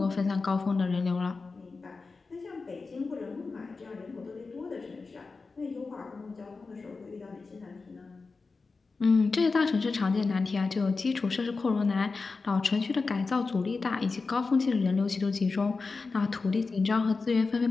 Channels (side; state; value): right; quieter; 4.2 dB